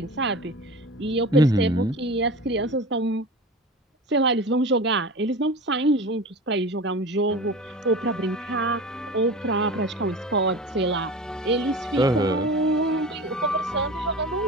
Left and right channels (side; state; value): both; normal; correlation 0.33